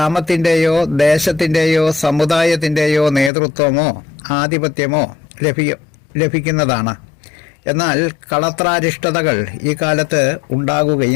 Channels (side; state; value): right; drops out; at 3.3 s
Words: ദേശത്തിൻ്റെയോ സമുദായത്തിൻ്റെയോ നേതൃത്വമോ ആധിപത്യമോ ലഭിക്കുന്നതാണ്. എന്നാൽ കളത്രാരിഷ്ടതകൾ ഈ കാലത്ത്